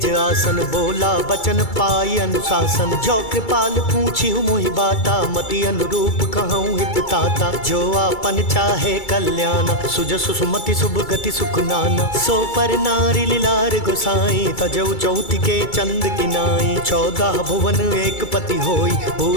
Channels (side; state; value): right; late; 2.3 ms